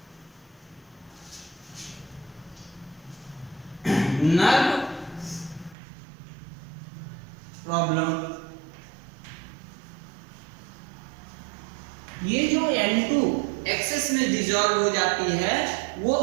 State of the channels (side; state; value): left; drops out; at 5.8 s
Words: nerve problem. ये जो N2 एक्सेस में डिसॉल्व हो जाती है, वो